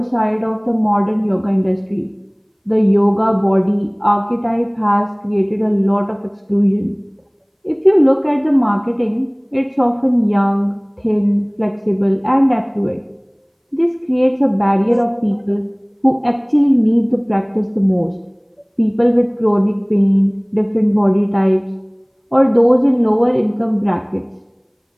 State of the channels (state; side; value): identical; both; correlation 1.00